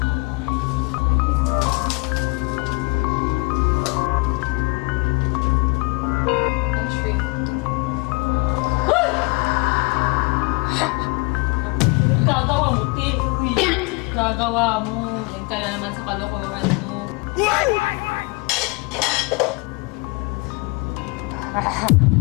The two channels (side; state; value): right; quieter; 28.7 dB